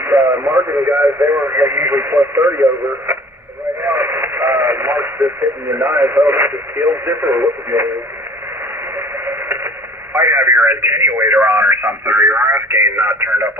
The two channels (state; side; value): normal; both; correlation 0.48